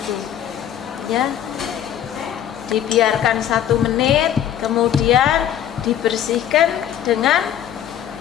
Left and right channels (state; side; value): quieter; right; 10.5 dB